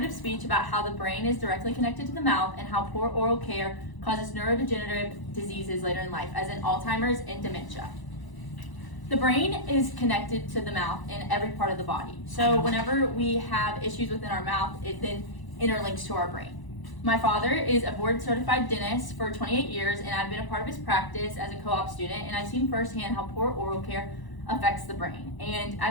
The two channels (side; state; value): right; late; 1.0 ms